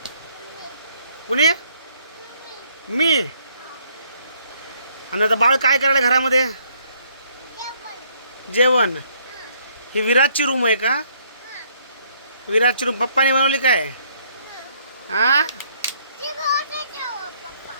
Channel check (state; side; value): inverted; both; correlation -0.66